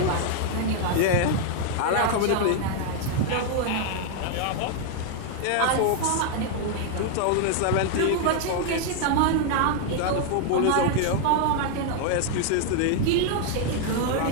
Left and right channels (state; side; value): different; both; correlation 0.00